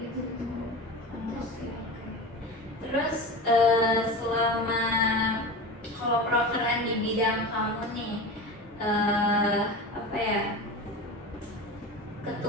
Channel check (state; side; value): normal; both; correlation 0.29